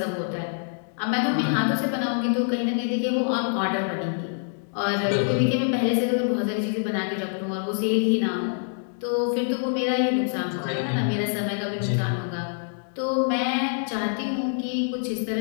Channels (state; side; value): silent; right; digital silence